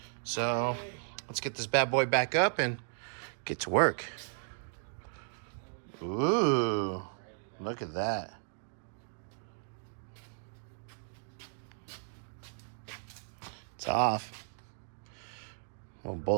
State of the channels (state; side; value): silent; left; digital silence